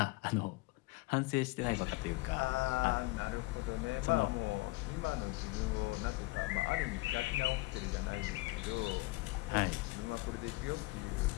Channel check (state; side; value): quieter; right; 21.9 dB